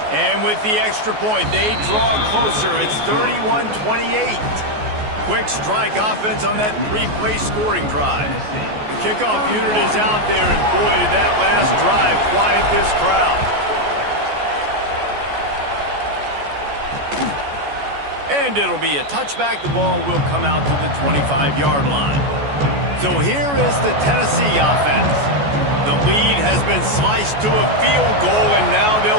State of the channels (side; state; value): left; late; 14 ms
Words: And with the extra point, they draw closer. It's 31-28. Quick strike offense on that three-play scoring drive. The kickoff unit is out there, and boy, did that last drive quiet this crowd. And it'll be a touchback. The ball will come out to the 25-yard line. So here is the Tennessee offense. The lead has been sliced to a field goal, and now